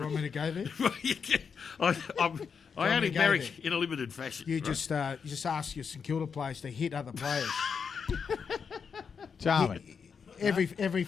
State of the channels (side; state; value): right; quieter; 6.2 dB